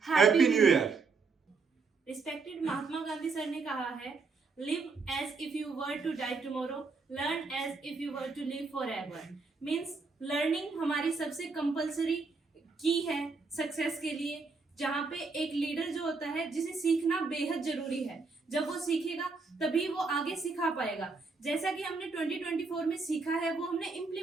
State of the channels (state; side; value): quieter; left; 4.3 dB